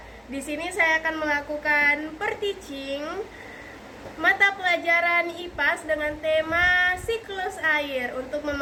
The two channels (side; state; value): both; identical; correlation 1.00